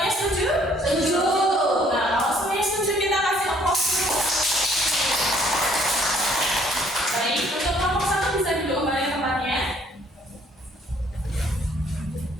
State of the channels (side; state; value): both; normal; correlation 0.62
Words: setuju? Setuju. Nah, kalau semuanya setuju kita kasih applause dulu. Baik, untuk kelompok 1 bisa duduk kembali tempatnya.